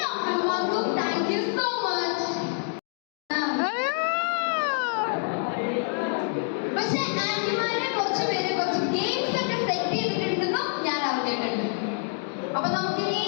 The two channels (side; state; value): right; silent; 56 dB below the other